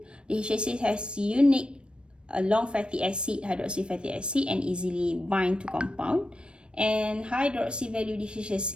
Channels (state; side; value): late; left; 0.056 ms